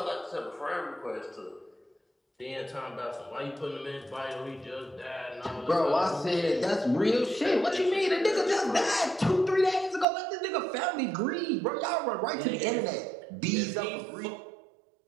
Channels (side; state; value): left; drops out; at 10.1 s